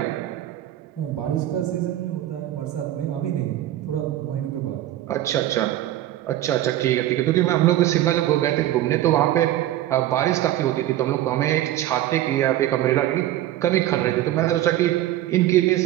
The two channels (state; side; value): quieter; left; 13.7 dB